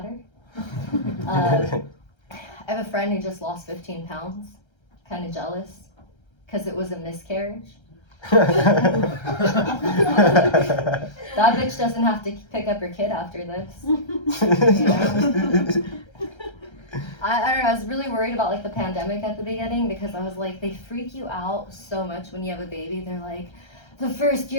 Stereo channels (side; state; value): right; late; 1.3 ms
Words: her. I have a friend who just lost 15 pounds. Kind of jealous because it was a miscarriage. That bitch doesn't have to pick up her kid after this. You know? I don't know, I was really worried about like the pandemic at the beginning because I was like, they freak you out so much when you have a baby. They're like, the first